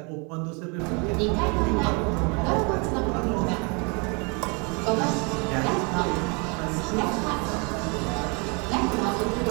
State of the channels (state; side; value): quieter; left; 32.5 dB